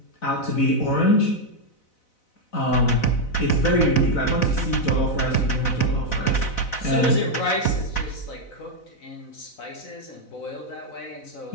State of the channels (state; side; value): late; right; 4.0 ms